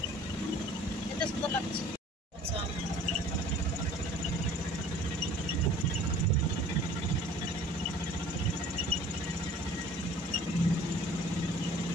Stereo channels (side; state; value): both; normal; correlation 0.49